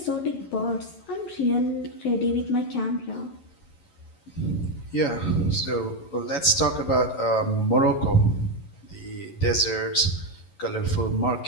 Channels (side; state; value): right; late; 11 ms